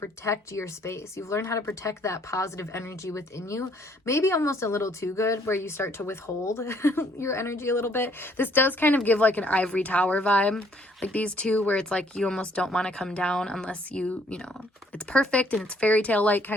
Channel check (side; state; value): both; normal; correlation 0.64